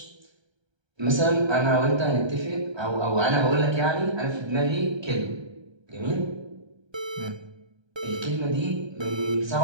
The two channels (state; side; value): late; left; 1.3 ms